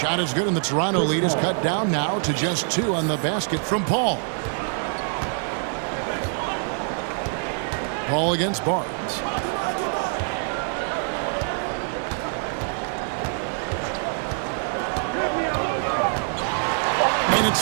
is good, and the Toronto lead is cut down now to just 2 on the basket from Paul. Paul against Barnes. And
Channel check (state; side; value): silent; left; 59 dB below the other